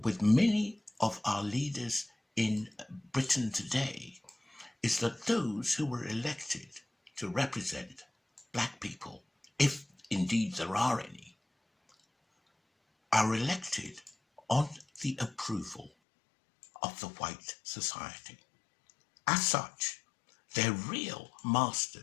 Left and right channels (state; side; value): drops out; right; at 15.9 s